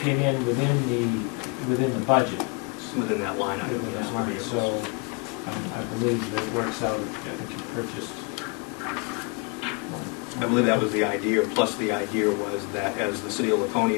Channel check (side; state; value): right; quieter; 30.6 dB